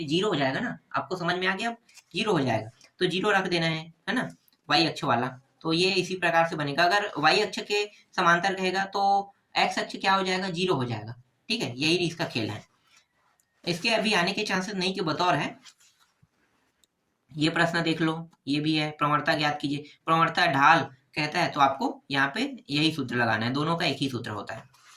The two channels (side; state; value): both; identical; correlation 1.00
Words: 0 हो जाएगा ना। आपको समझ में आ गया, अब 0 हो जाएगा तो 0 रख देना है ना, वाई अक्ष वाला। तो ये इसी प्रकार से बनेगा। अगर वाई अक्ष के समांतर कहेगा तो एक्स अक्ष क्या हो जाएगा, 0 हो जाएगा। ठीक है, यही इसका खेल है। इसके अभी आने के चांसेस नहीं के बतौर है। ये प्रश्न देख लो, ये भी है, प्रवणता ज्ञात कीजिए। प्रवणता ढाल कहता है तो आपको यहाँ पे यही सूत्र लगाना है, दोनों का एक ही सूत्र होता है